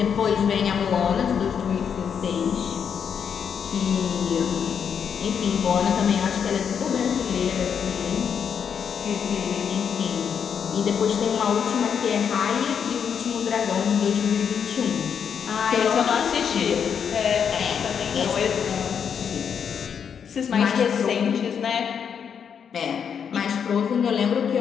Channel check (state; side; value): quieter; right; 7.4 dB